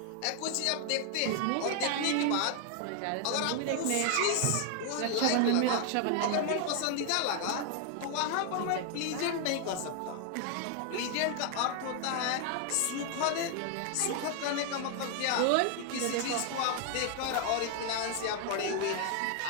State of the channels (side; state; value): both; different; correlation 0.00